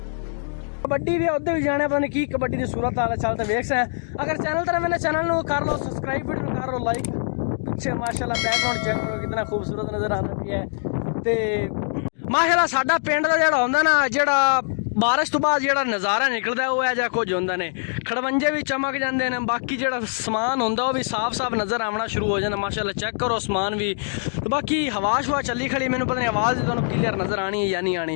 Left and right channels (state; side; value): silent; right; digital silence